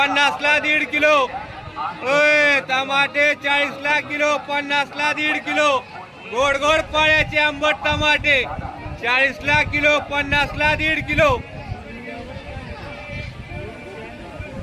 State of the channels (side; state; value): both; identical; correlation 1.00